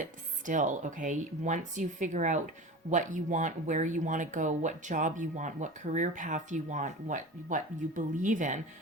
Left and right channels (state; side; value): normal; both; correlation 0.33